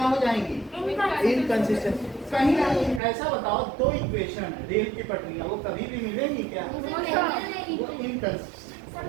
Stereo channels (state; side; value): drops out; left; at 3.0 s